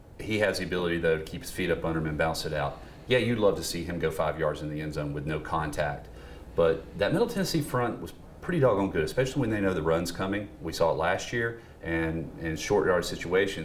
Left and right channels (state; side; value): identical; both; correlation 1.00